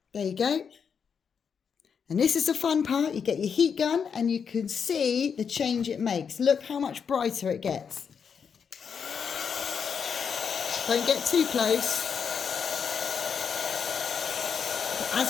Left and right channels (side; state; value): right; quieter; 6.7 dB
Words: There you go. And this is the fun part. You get your heat gun and you can see the change it makes. Look how much brighter it gets. Don't get too close. But as